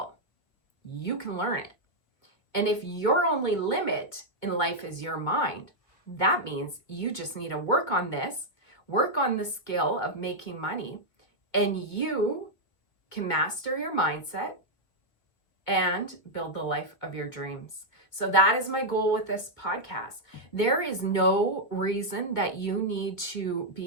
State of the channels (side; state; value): right; late; 2.0 ms